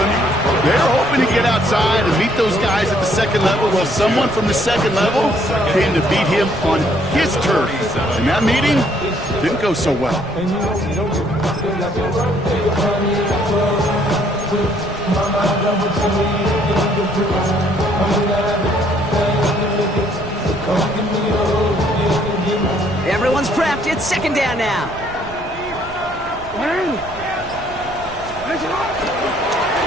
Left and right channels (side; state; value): right; noise; rumble, 16 dB below the sound